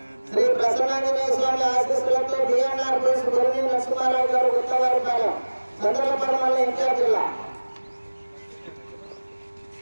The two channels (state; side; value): inverted; both; correlation -1.00